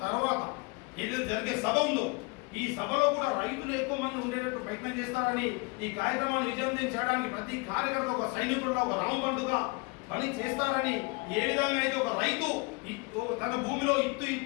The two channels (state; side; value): quieter; right; 28.9 dB